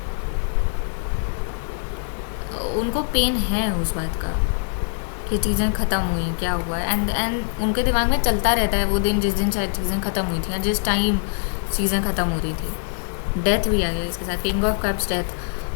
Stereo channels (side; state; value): right; silent; 63 dB below the other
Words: उनको पेन है उस बात का कि चीज़ें ख़त्म हुई, क्या हुआ. एंड उनके दिमाग में चलता रहता है वो दिन जिस दिन शायद चीज़ें ख़त्म हुई थी या जिस टाइम चीज़ें ख़त्म हो रही थी. डेथ भी आ गया इसके साथ. King of cups death.